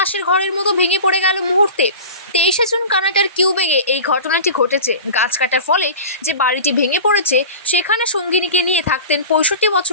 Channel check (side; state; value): both; inverted; correlation -0.34